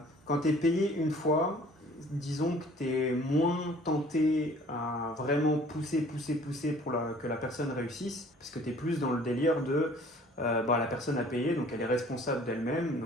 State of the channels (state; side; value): normal; both; correlation 0.52